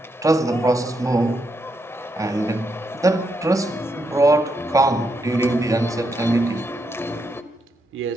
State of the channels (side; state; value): both; normal; correlation 0.81